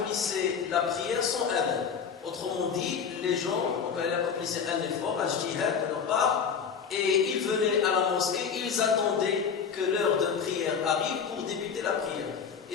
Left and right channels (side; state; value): right; quieter; 6.6 dB